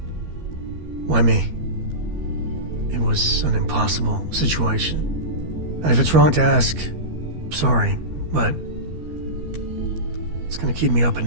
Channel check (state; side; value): late; left; 13 ms